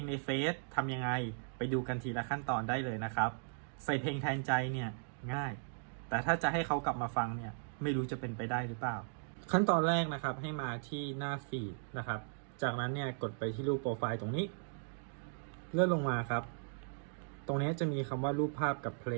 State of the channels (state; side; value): silent; left; digital silence